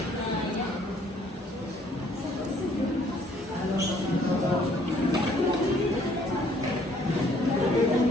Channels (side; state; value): both; normal; correlation 0.62